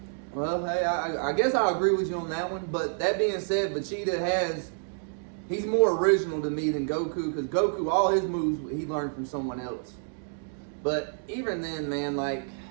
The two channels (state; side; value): silent; left; digital silence